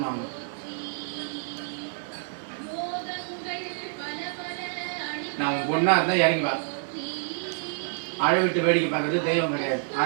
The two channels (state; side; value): silent; left; digital silence